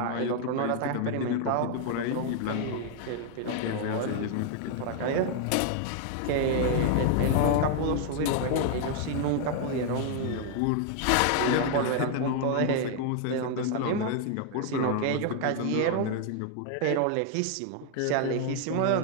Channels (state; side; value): different; both; correlation 0.00